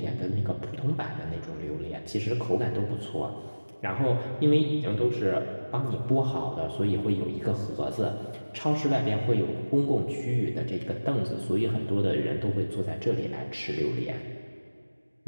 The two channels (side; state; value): both; inverted; correlation -1.00